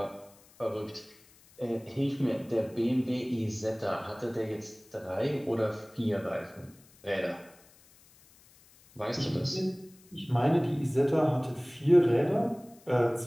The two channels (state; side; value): noise; left; hiss, 27 dB below the sound